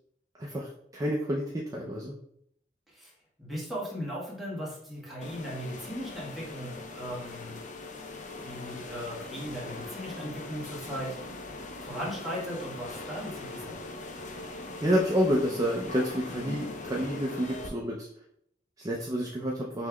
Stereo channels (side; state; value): both; normal; correlation 0.65